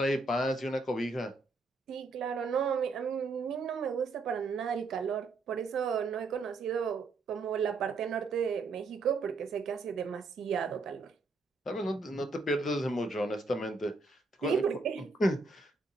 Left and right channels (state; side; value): quieter; left; 3.6 dB